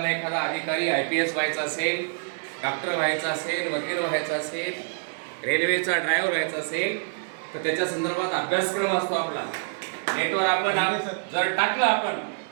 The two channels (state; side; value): silent; left; digital silence